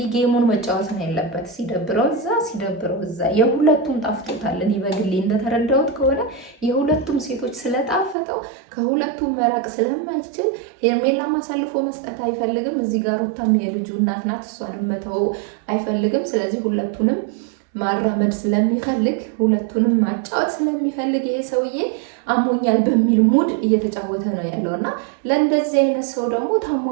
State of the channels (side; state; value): left; drops out; at 8.2 s